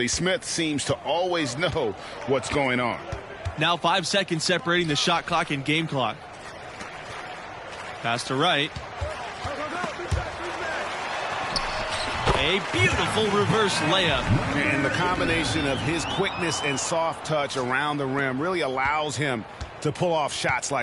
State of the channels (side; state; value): both; identical; correlation 1.00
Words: Smith seems to always know what's going on. Now 5 seconds separating the shot clock and game clock. Pass to Wright. A beautiful reverse layup. And the combination of his quickness and soft touch around the rim really allows him to pull off shots